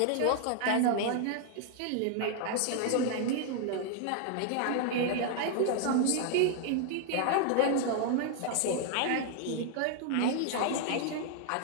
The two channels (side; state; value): both; different; correlation 0.00